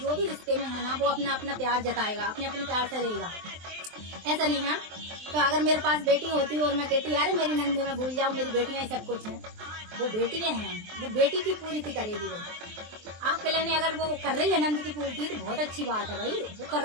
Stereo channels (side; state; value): left; late; 23 ms